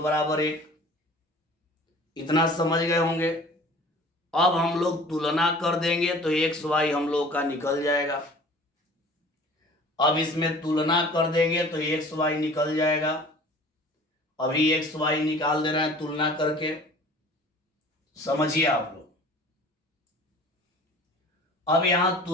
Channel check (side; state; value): both; normal; correlation 0.46